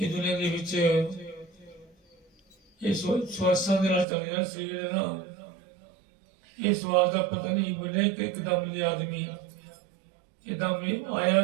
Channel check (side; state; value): left; drops out; at 4.0 s